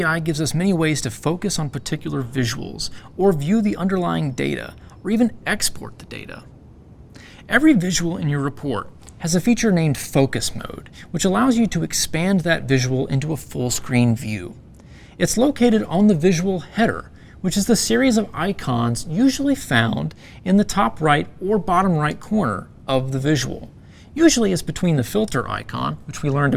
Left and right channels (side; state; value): both; identical; correlation 1.00